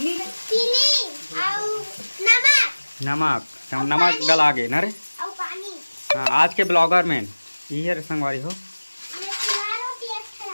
नमक डला गए ना रे हाँ आज के ब्लॉगर में ये संगवारी हो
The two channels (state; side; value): inverted; both; correlation -1.00